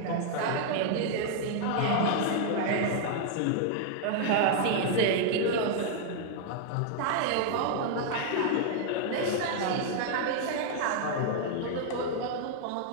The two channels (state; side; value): different; both; correlation 0.00